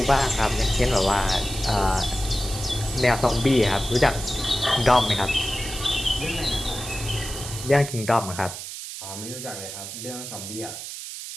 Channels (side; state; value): right; noise; hiss, 9 dB below the sound